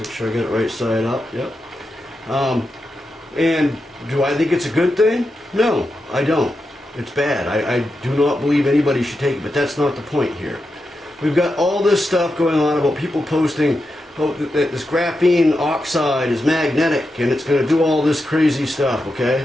sure I get it right side up. Yep. And do I think it's a good thing? No, I don't. It's bad. I do not believe anybody should take it, but that's not the point here. We've got all this stuff going on about people posting, oh, that this graphene oxide is magnetic and it's going to do all this crazy stuff,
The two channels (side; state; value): both; normal; correlation 0.88